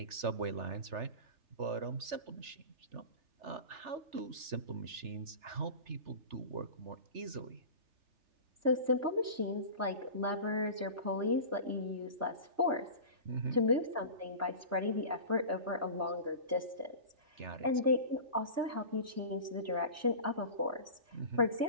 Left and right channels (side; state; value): left; late; 3.3 ms